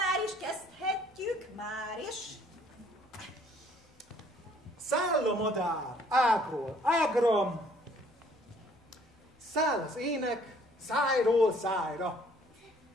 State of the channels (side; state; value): both; normal; correlation 0.60